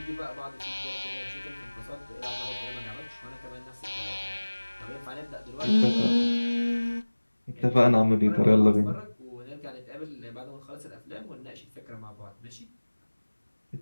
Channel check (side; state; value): both; inverted; correlation -1.00